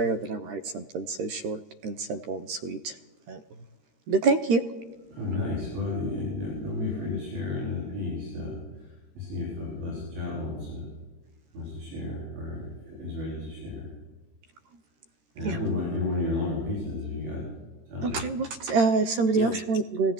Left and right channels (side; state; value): left; late; 13 ms